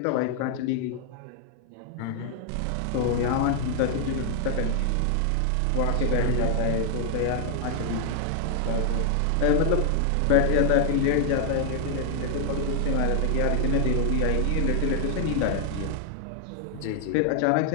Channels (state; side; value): different; both; correlation 0.00